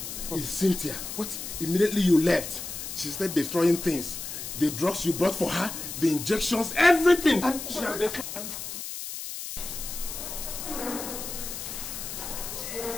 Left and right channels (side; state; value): left; noise; hiss, 7 dB below the sound